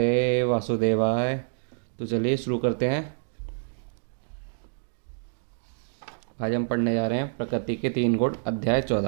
वासुदेवाय। तो चलिए शुरू करते हैं। आज हम पढ़ने जा रहे हैं प्रकृति के 3 गुण, अध्याय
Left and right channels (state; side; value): silent; left; digital silence